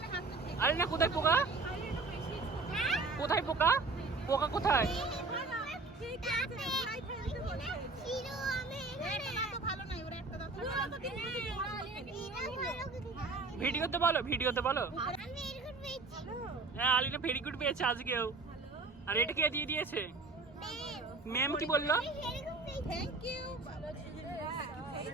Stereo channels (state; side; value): quieter; left; 3.7 dB